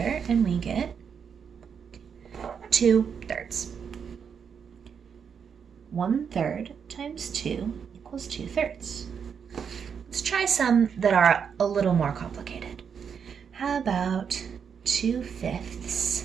and we get 2/3. 1/3 times 2 equals 2/3. Let's try some that are a little more complicated. How about 2/5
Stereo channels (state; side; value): quieter; left; 6.9 dB